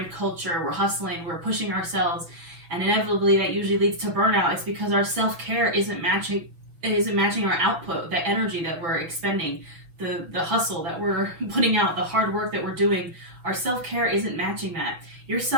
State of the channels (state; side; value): late; left; 6.2 ms